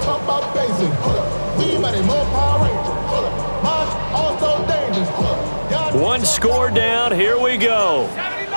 talk about basic. We mighty more Power Ranger. Mine also dangerous. 1 score down. Here we go.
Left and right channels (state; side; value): inverted; both; correlation -1.00